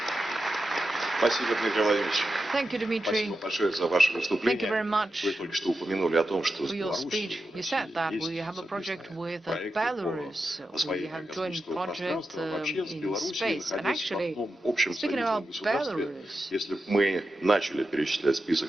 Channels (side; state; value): both; normal; correlation 0.90